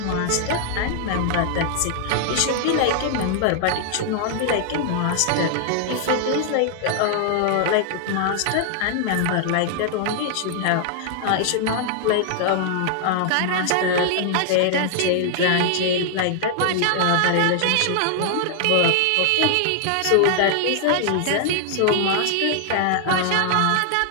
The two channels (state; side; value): different; both; correlation 0.00